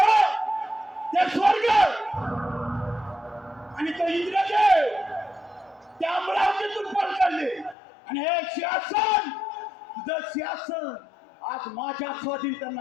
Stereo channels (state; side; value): drops out; right; at 7.8 s